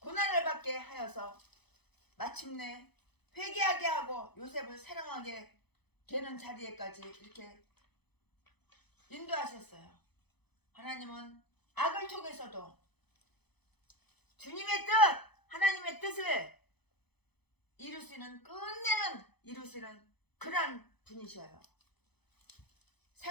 받게 하여서 마침내 회개하게 하고 요셉을 사랑하게 되는 자리에까지 이렇게 인도하셨어요. 하나님은 악을 통해서도 주님의 뜻, 하나님의 뜻을 끝내는 이루시는 그런 분이셔요.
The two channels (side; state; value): right; late; 0.98 ms